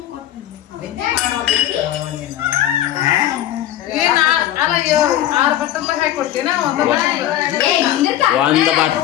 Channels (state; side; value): quieter; right; 12.5 dB